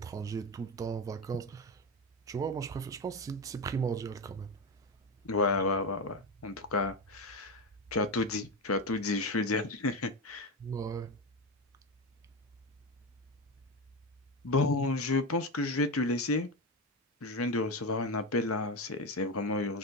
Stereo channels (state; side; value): normal; both; correlation 0.16